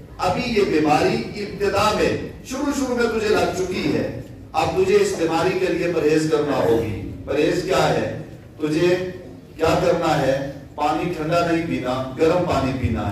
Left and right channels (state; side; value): identical; both; correlation 1.00